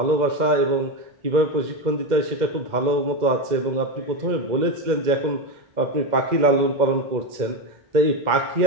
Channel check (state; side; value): late; left; 2.1 ms